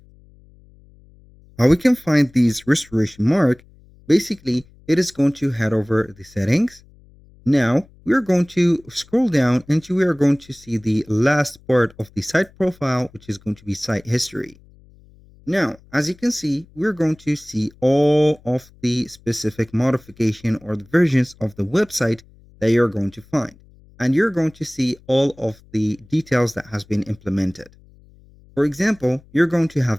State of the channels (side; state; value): left; noise; hum, 27 dB below the sound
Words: How we can find these restoration mark, basically, it is going to head over the settings. Now we are going to scroll down and we are going to see the last part of the site profile, which is going to be site history. Now, as you can see, we're going to see all of the specific modification or the versions of the website that you're going to find. And you're going to see all of the details that has been implemented. For example, you're going to have